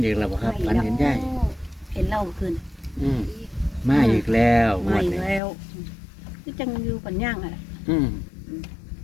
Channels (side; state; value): right; drops out; at 5.4 s